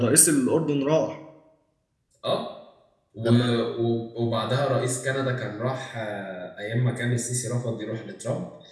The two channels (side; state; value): both; identical; correlation 1.00